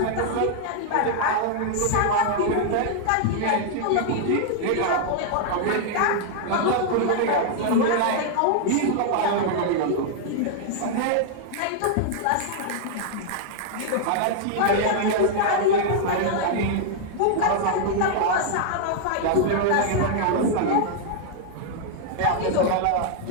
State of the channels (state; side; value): different; both; correlation 0.00